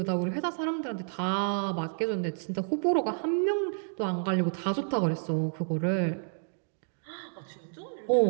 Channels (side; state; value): left; silent; digital silence